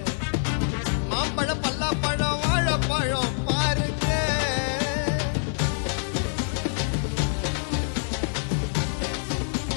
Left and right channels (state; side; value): silent; right; 61 dB below the other